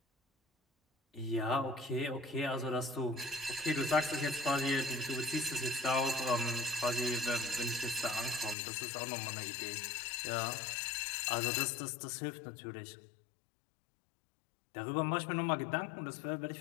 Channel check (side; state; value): right; drops out; at 8.6 s